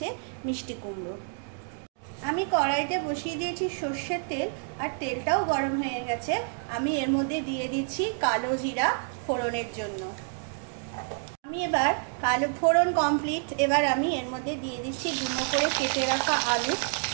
মিষ্টি কুমড়ো। আমি কড়াইতে বসিয়ে দিয়েছি সর্ষের তেল, আর তেলটাও গরম হয়ে গেছে। আমি এর মধ্যে দিয়ে দিচ্ছি কালো জিরা ফোড়নের জন্য। আমি এবার কালো ফোড়ন কমপ্লিট, এবার আমি এর মধ্যে দিয়ে দিচ্ছি ডুমো করে কেটে রাখা আলু।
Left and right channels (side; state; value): left; silent; 59 dB below the other